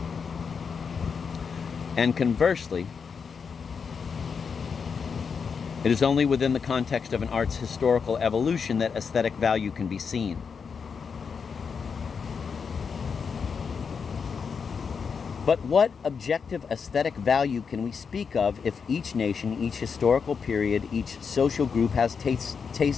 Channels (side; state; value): right; quieter; 6.0 dB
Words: And conversely, it is only within the context of an art's historical evolution that aesthetic value can be seen. But what objective aesthetic value can we speak of if each nation, each historical period, each social group has